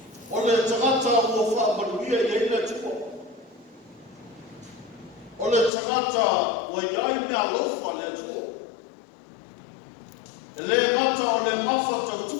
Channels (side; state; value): right; drops out; at 5.7 s